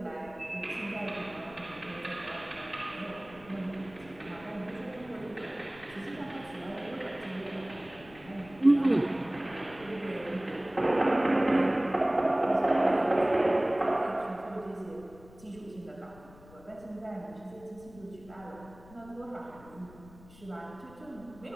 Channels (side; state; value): left; noise; rumble, 21 dB below the sound